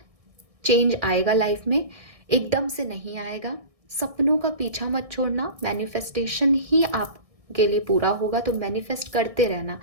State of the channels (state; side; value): late; left; 1.6 ms